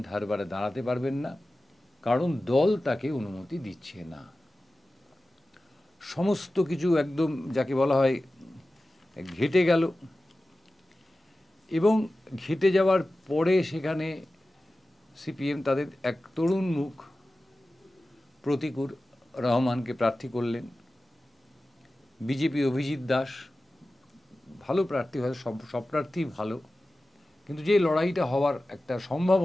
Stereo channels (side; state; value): both; normal; correlation 0.95